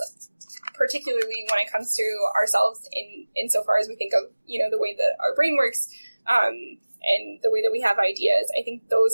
particularly when it comes to ourselves insofar as we think of, the way that our brain works, and the way that we have ideas, I think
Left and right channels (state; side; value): inverted; both; correlation -1.00